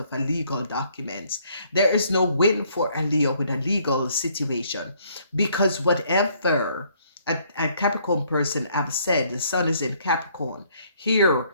a legal documents. There is no win for a Leo with a legal situation because whatever a Capricorn person have said, the sun is in Capricorn. Here,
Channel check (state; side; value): inverted; both; correlation -0.65